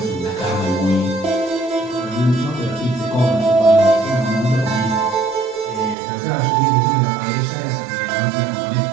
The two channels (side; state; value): left; drops out; at 6.0 s